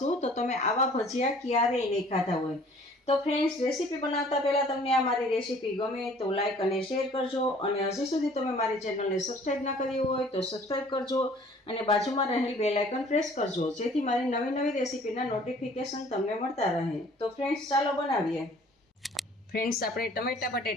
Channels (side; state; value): both; normal; correlation 0.53